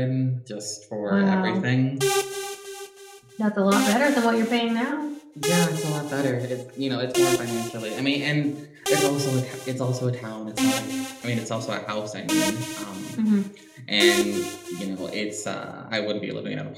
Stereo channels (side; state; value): both; identical; correlation 1.00